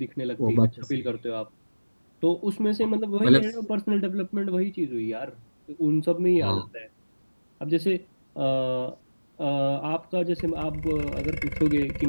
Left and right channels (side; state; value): both; inverted; correlation -1.00